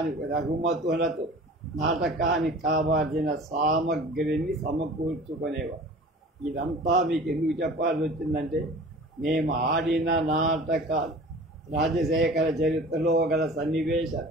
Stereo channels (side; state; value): both; normal; correlation 0.42